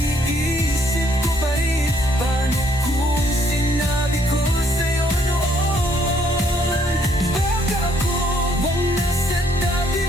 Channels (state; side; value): normal; both; correlation 0.67